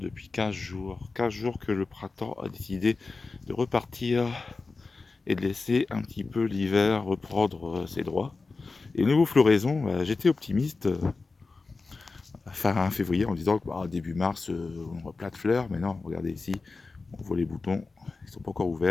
15 jours. 15 jours que le printemps a décidé de repartir et de laisser un petit peu l'hiver reprendre ses droits. Et niveau floraison, j'étais optimiste fin février en disant que début mars on aura plein de fleurs, mais non, regardez ici, on voit les boutons, ils sont pas encore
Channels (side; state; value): right; quieter; 4.0 dB